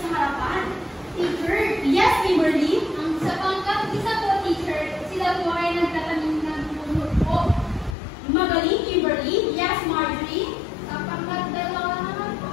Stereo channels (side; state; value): right; drops out; at 8.0 s